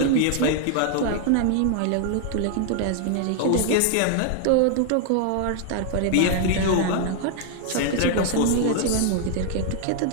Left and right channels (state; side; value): different; both; correlation 0.00